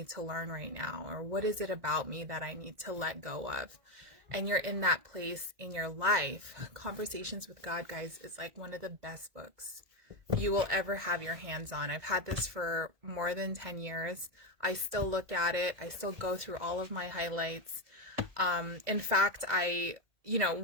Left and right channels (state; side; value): late; left; 2.0 ms